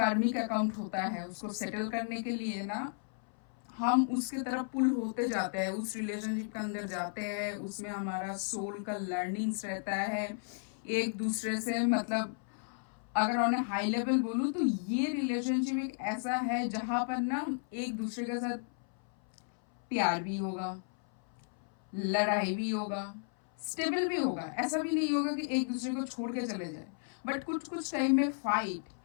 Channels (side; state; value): right; silent; 55 dB below the other